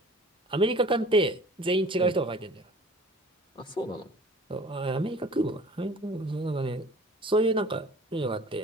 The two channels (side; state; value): both; normal; correlation 0.47